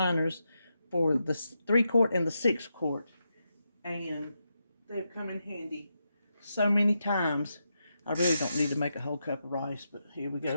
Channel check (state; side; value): inverted; both; correlation -0.85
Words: for the 3-quart and the 6-quart. And they've come in handy so many times. I really don't need to make a whole cup of rice, but here we